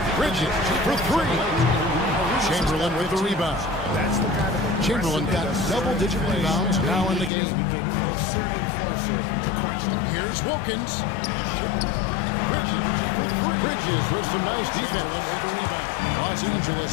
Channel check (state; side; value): drops out; right; at 7.3 s